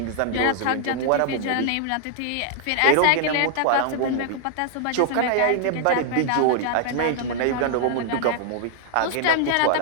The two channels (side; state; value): both; different; correlation 0.00